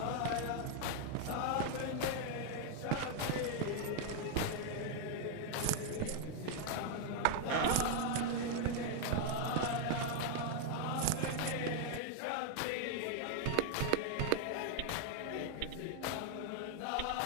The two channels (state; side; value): different; both; correlation 0.00